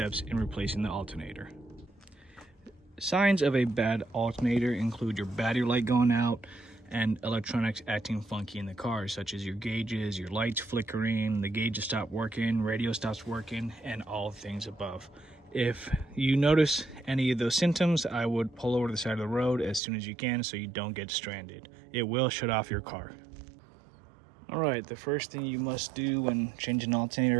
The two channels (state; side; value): drops out; left; at 19.8 s